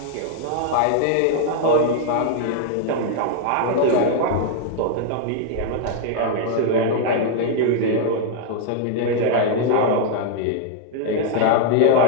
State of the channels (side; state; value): both; different; correlation -0.01